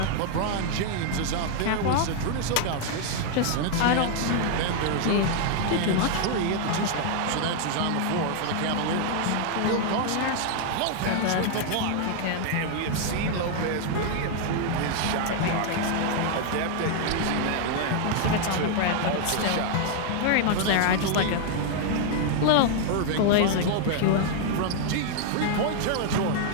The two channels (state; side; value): different; both; correlation 0.00